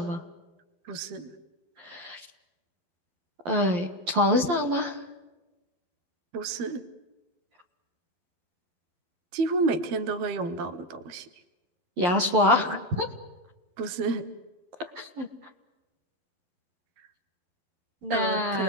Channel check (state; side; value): late; left; 11 ms